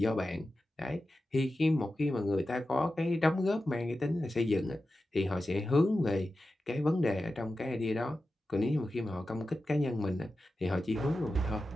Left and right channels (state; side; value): normal; both; correlation 0.93